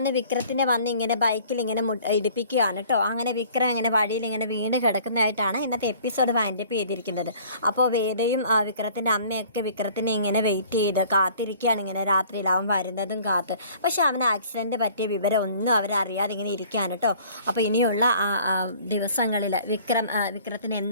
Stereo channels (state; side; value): inverted; both; correlation -0.52